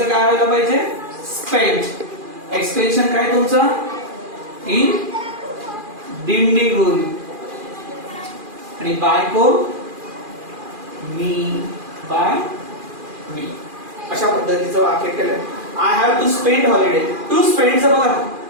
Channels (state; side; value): late; left; 2.4 ms